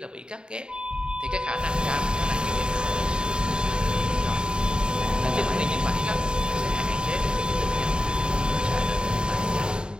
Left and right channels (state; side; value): late; left; 0.049 ms